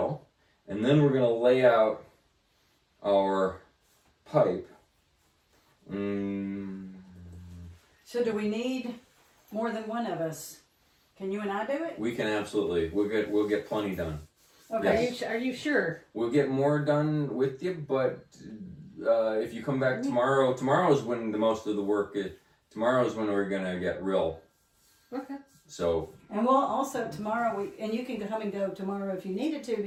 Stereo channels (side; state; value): both; identical; correlation 1.00